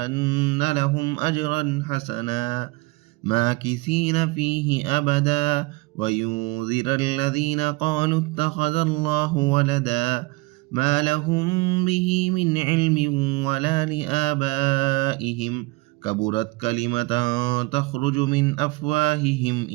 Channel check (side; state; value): left; quieter; 23.5 dB